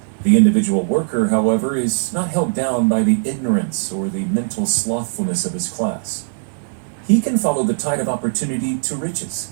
The individual worker, however, is not held down by the ignorance or the mental slothfulness of his class. He can follow the tide of opportunity to riches,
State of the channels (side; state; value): left; silent; 66 dB below the other